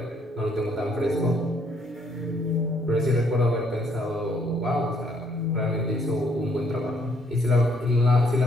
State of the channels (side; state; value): both; normal; correlation 0.68